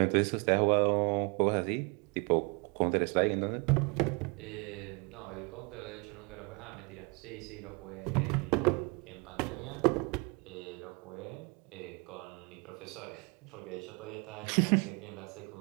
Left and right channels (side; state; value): left; quieter; 31.5 dB